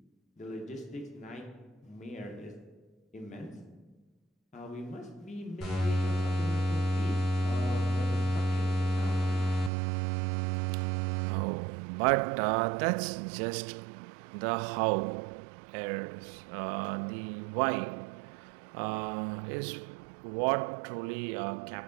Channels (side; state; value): left; drops out; at 9.7 s